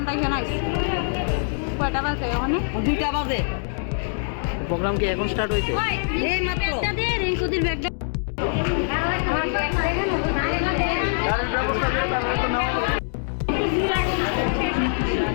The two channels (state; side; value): silent; right; digital silence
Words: এখানে আইছি। কয়টা বাজে ওখানে? 2টা বাজে। প্রোগ্রাম কি এখন স্টার্ট হয়েছে? এই মাত্র একটা দে রিঙ্কুদির ব্যাগটা।